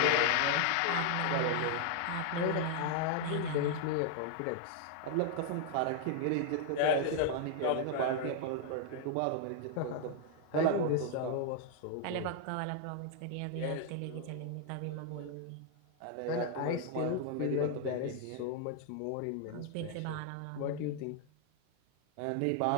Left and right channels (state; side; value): different; both; correlation 0.00